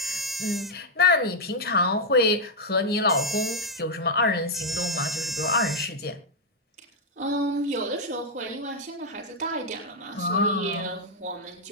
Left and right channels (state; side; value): normal; both; correlation -0.02